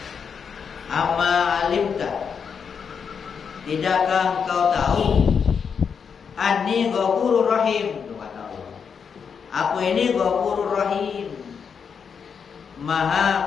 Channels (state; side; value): quieter; right; 6.5 dB